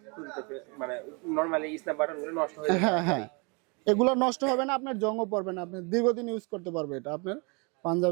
মানে নরমালি স্ন্যাপ বাটনগুলো নষ্ট হয়ে যায়। হ্যাঁ হ্যাঁ, এগুলো নষ্ট হবে না, আপনার জংও পড়বে না, আপনি দীর্ঘদিন ইউজ করতে পারবে এটা আপনার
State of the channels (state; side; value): quieter; left; 31.8 dB